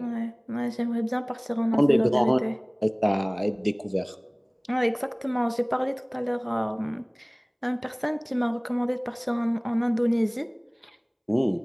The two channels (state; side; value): identical; both; correlation 1.00